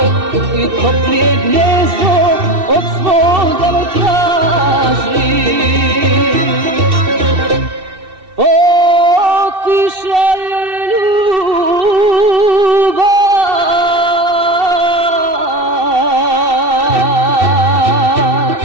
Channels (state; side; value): late; left; 2.7 ms